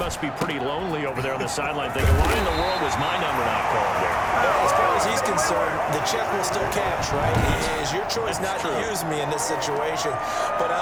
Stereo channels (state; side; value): identical; both; correlation 1.00